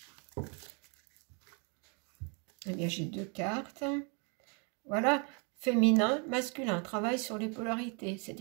Eh bien, j'ai 2 cartes. Voilà, féminin, masculin. Travaille sur les polarités.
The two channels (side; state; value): left; quieter; 35.8 dB